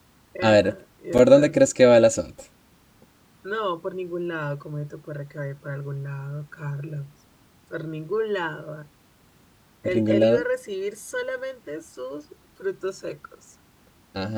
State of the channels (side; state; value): both; identical; correlation 1.00